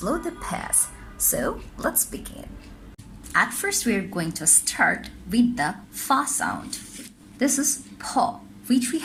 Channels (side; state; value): both; identical; correlation 1.00